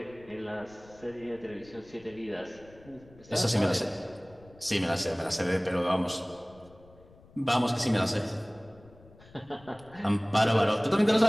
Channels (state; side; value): noise; left; rumble, 25 dB below the sound